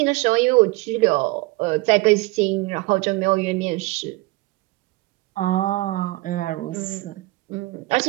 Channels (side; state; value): left; quieter; 21.4 dB